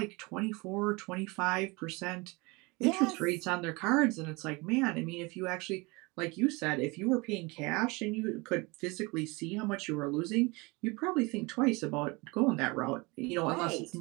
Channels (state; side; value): quieter; left; 25.9 dB